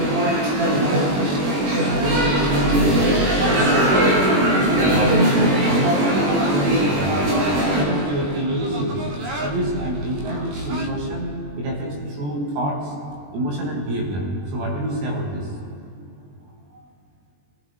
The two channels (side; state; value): left; late; 21 ms